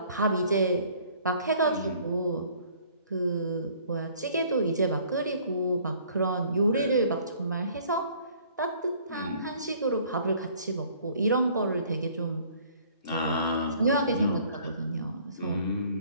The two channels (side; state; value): both; inverted; correlation -0.56